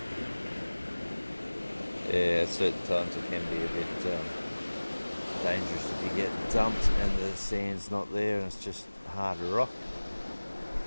it can be a bit dangerous if you get dumped and the sand's not there and it's just hard rock.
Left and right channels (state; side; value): inverted; both; correlation -1.00